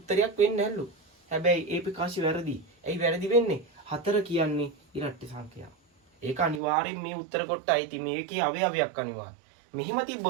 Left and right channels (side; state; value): left; drops out; at 6.6 s